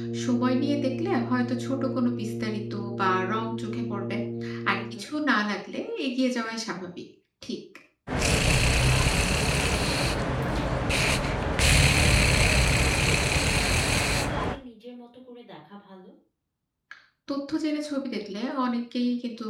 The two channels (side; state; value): both; identical; correlation 1.00